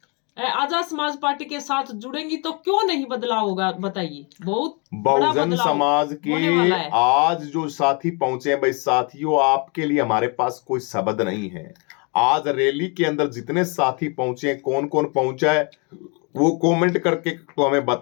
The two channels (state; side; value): quieter; right; 33.1 dB